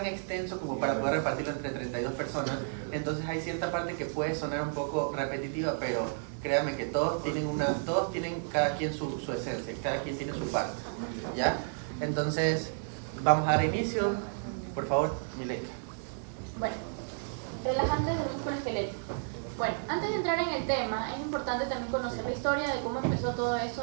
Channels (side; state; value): left; silent; 56 dB below the other